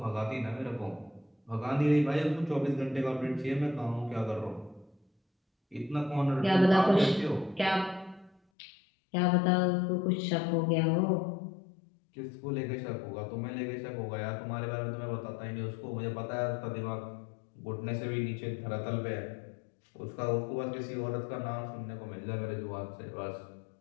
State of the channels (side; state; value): right; drops out; at 8.3 s